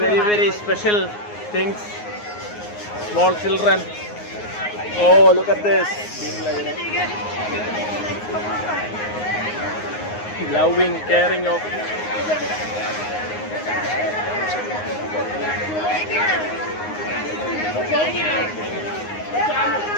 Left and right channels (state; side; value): late; right; 9.6 ms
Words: very special things. Small children. Oh, look at this. Loving, caring of.